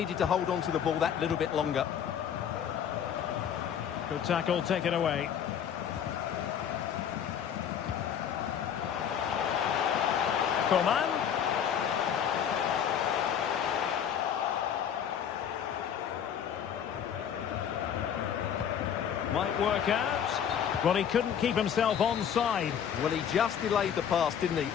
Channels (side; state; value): right; quieter; 8.6 dB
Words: to hold on to the ball that little bit longer. Good tackle, taken away. Coman. Might work out. Well, he couldn't keep himself onside. Well, he just delayed the pass, didn't he?